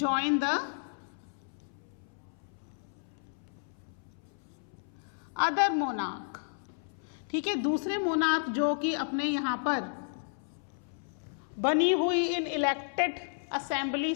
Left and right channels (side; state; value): right; silent; 56 dB below the other